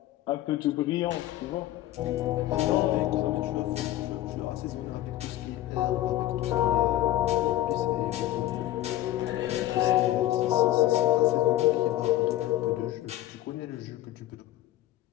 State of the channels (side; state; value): right; quieter; 14.6 dB